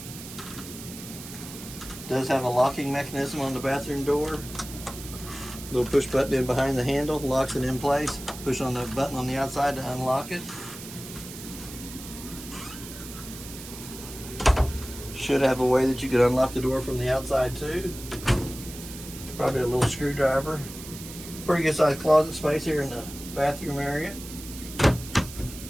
Does have a locking mechanism on the bathroom door. Little push button in behind the handle, locks it in place. Push on the button on the outside to unlock it. Should have a way that you could unlock the door from the outside too. Probably a little screwdriver. Pretty good sized closet space here in the bathroom area.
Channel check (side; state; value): right; noise; hiss, 13 dB below the sound